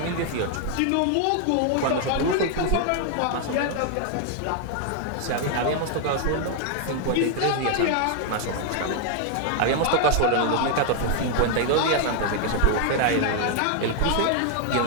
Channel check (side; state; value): both; different; correlation 0.00